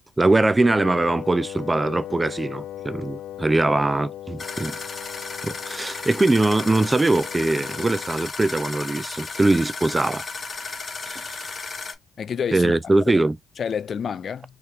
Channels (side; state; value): both; normal; correlation 0.95